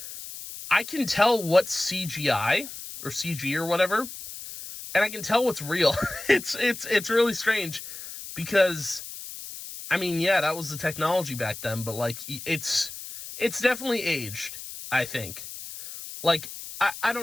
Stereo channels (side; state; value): left; noise; hiss, 11 dB below the sound